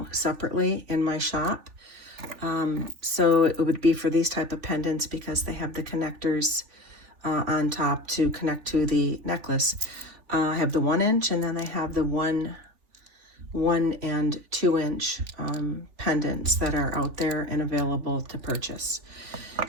separately in my shop. So it would be for these type of pendants because they have the connectors on top to connect to the necklace. I have the 1 inch and then I have the 1 and 2 inch pendants that are out there and available to purchase.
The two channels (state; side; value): late; left; 3.4 ms